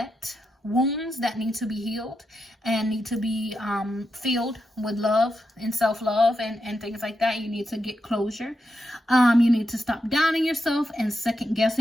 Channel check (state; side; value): normal; both; correlation 0.86